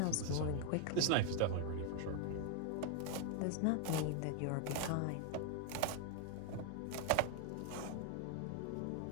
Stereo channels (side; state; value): both; different; correlation 0.01